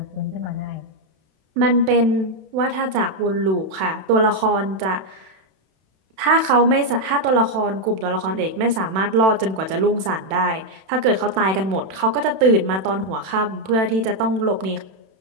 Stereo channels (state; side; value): late; left; 32 ms